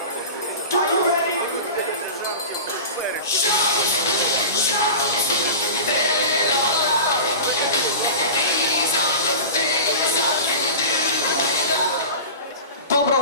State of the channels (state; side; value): inverted; both; correlation -0.32